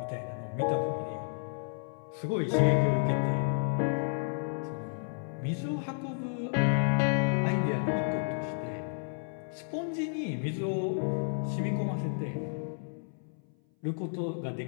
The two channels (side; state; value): right; silent; 57 dB below the other